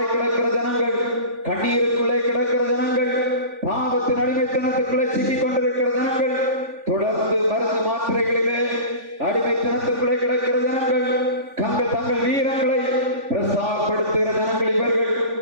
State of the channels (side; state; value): left; late; 3.5 ms